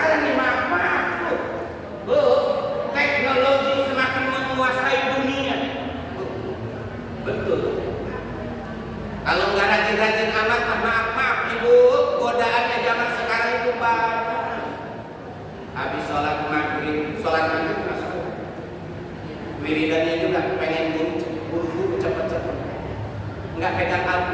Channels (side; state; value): both; identical; correlation 1.00